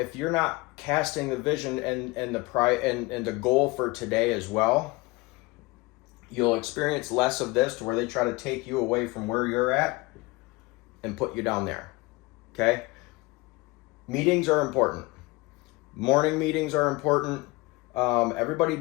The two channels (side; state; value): right; quieter; 23.4 dB